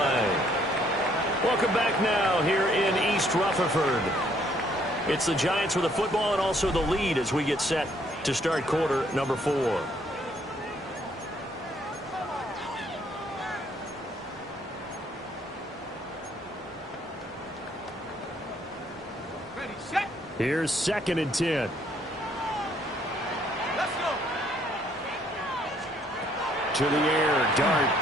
Welcome back now here in East Rutherford. It's the Giants with the football and also the lead as we get set to start quarter number 4. Ready, set. Here's 2nd and 10. Let's go. To the air, Dart.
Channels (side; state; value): both; normal; correlation 0.66